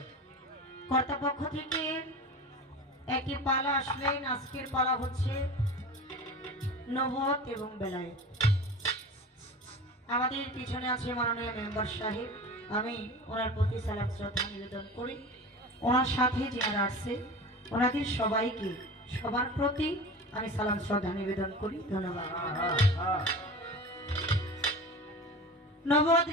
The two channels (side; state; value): both; normal; correlation 0.34